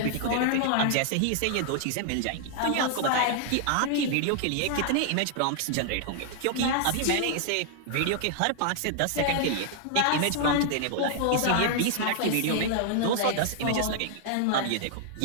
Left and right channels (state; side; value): different; both; correlation -0.01